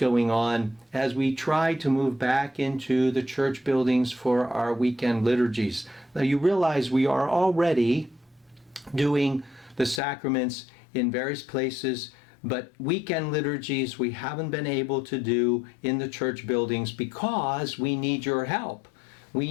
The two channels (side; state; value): right; drops out; at 10.0 s